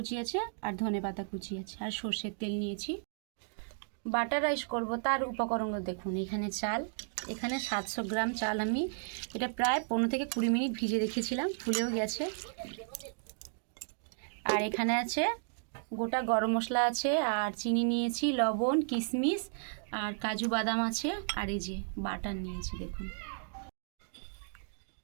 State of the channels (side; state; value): left; silent; digital silence